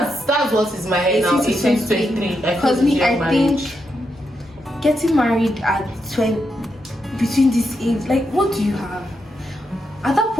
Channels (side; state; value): both; normal; correlation 0.83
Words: that's what is my head now. 18 to 23. Because I think getting married at 20, between this age, like, what do you have? At that